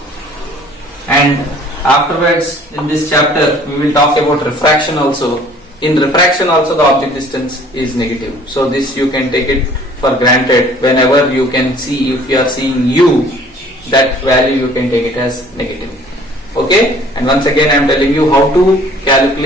And afterwards in this chapter we will talk about refraction also. In refraction also the object distance is negative. So this you can take it for granted. Whenever you can see, if you are seeing U, that value you can take it as negative. Okay, and once again I am telling you how to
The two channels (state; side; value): normal; both; correlation 0.53